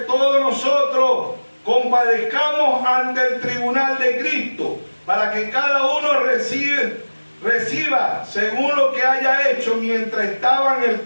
todos nosotros compadezcamos ante el tribunal de Cristo, para que cada uno reciba según lo que haya hecho mientras estaba en el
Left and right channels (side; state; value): both; inverted; correlation -1.00